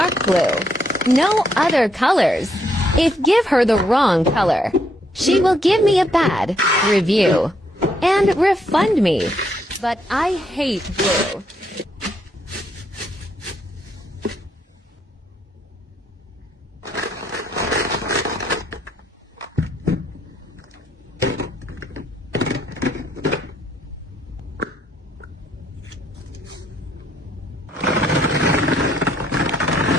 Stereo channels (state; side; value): normal; both; correlation 0.73